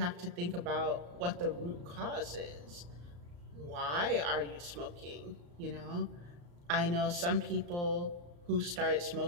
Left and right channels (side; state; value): left; late; 34 ms